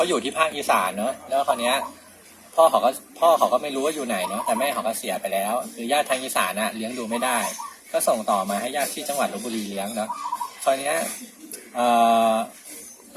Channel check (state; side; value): identical; both; correlation 1.00